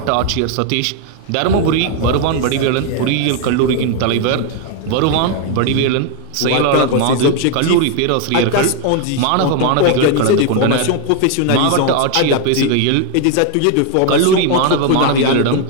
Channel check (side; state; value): both; different; correlation 0.01